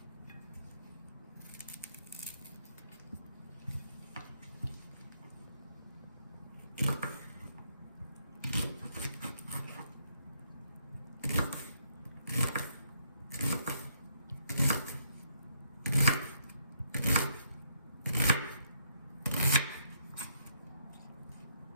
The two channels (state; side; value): inverted; both; correlation -0.73